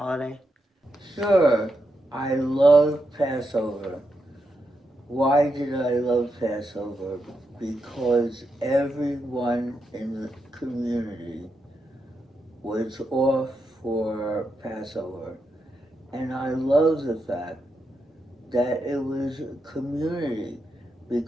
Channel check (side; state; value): both; normal; correlation 0.84